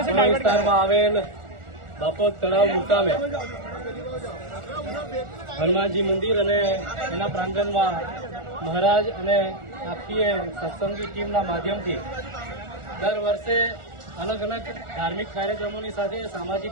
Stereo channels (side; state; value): left; late; 1.4 ms